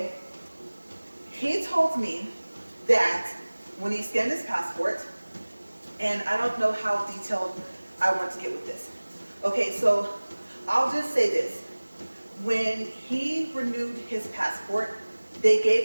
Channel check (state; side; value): inverted; both; correlation -1.00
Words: He told me that when he scanned his passport, and I don't know how detailed I want to get with this. Okay, so I'll just say this. When he renewed his passport, they